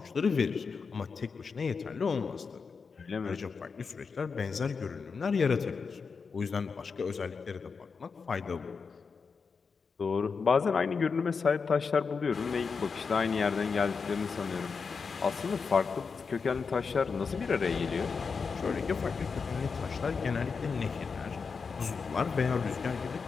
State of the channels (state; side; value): quieter; right; 5.2 dB